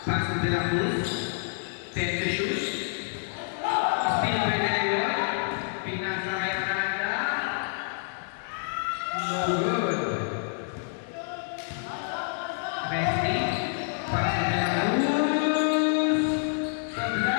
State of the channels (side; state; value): right; silent; digital silence